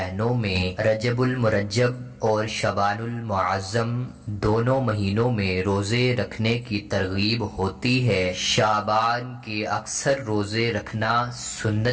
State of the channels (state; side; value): identical; both; correlation 1.00